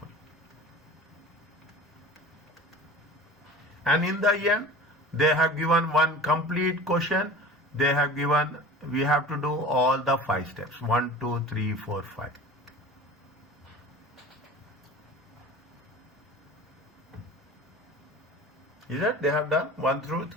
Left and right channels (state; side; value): normal; both; correlation 0.38